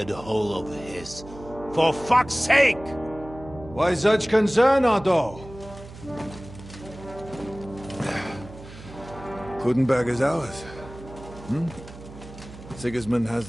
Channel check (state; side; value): noise; right; hum, 16 dB below the sound